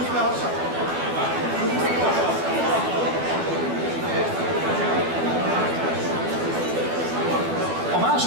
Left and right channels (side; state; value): left; late; 12 ms